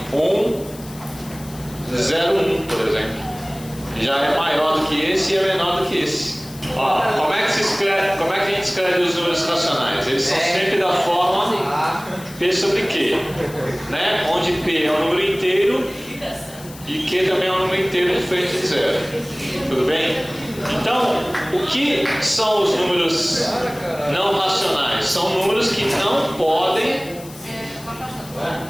por exemplo. Já é maior do que esse e é menor do que esse. Ó, como é que se escreve? Como é que a gente escreve os números racionais? Eles são sempre da forma P sobre Q, né? Onde P é um número inteiro e Q também é um número inteiro diferente de zero. Tudo bem? Então, o que são os números não racionais? São números que não podem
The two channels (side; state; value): left; noise; hiss, 18 dB below the sound